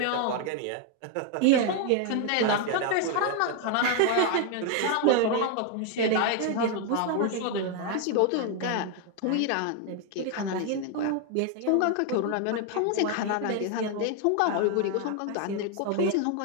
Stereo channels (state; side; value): different; both; correlation 0.00